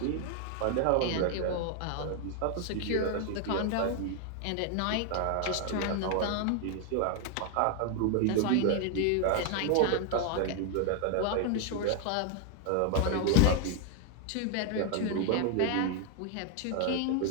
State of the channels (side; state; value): both; different; correlation 0.00